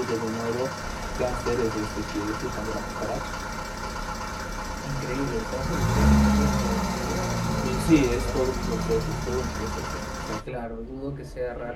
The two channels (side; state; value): both; identical; correlation 1.00